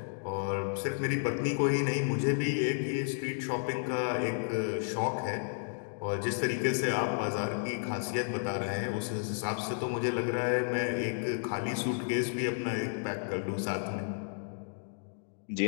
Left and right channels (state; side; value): silent; right; digital silence